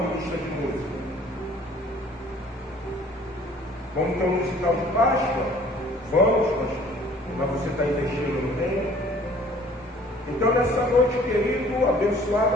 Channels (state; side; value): normal; both; correlation 0.54